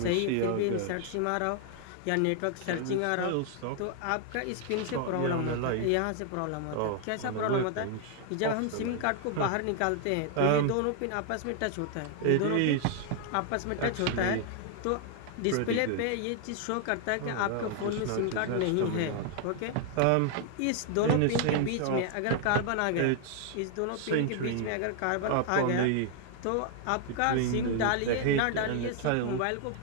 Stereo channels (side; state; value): both; different; correlation 0.00